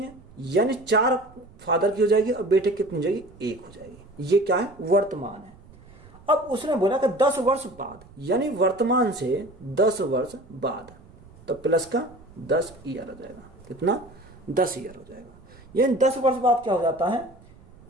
है, यानी 4 फादर की हो जाएगी और बेटे कितनी हो जाएगी, 1 हो जाएगी। ये क्या है, वर्तमान है। अब उसने बोला कि 10 वर्ष बाद, यानी वर्तमान से 10 वर्ष बाद, तो प्लस का 10 ईयर हो जाएगा। कितना, 10 ईयर हो जाएगा। यानी 10 वर्ष बाद क्या हो जाता है,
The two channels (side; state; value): right; noise; rumble, 24 dB below the sound